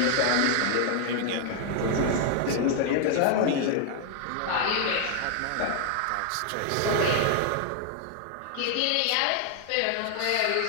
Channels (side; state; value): both; different; correlation 0.00